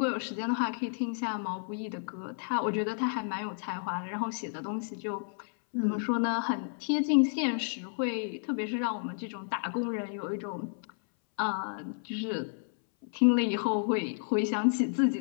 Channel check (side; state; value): right; silent; 57 dB below the other